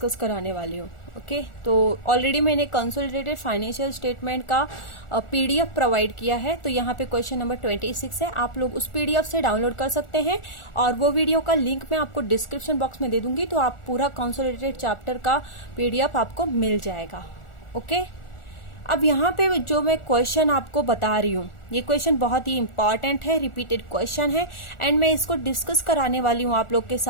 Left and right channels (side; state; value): right; late; 1.4 ms